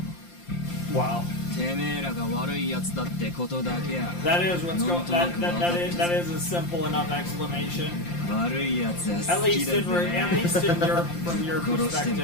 Wow. てめえらが悪いやつだってことだけや。 That is what's going. That is a simple enough explanation. 悪いやつは At 好き least だ in ぜ。 from your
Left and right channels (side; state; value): right; late; 5.7 ms